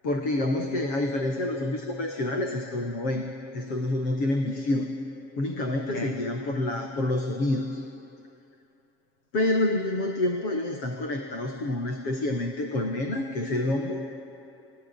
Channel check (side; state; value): right; late; 7.4 ms